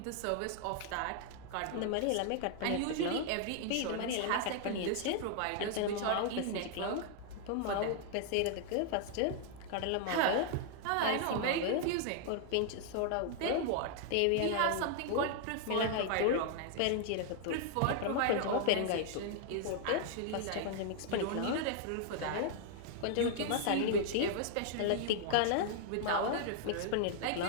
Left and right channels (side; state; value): both; different; correlation 0.00